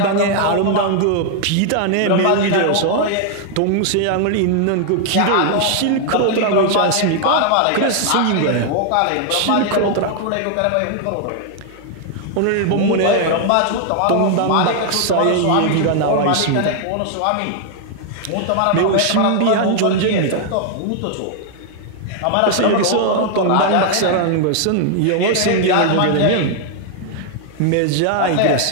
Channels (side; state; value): both; different; correlation 0.00